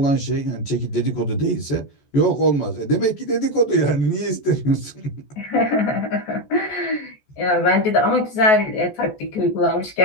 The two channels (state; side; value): late; right; 14 ms